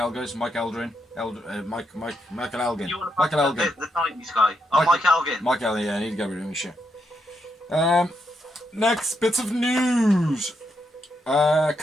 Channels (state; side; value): normal; both; correlation 0.80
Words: Mike Eldrin, Michael Elgin. Michael Elgin. The 90s guy. Oh, Mike Elgin. Mike Elgin, yeah, I need to get rid of him, shit. Next bits of news.